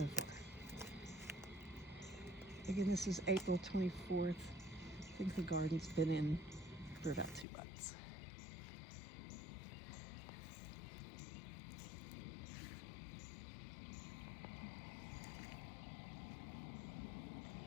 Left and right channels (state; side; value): drops out; right; at 7.5 s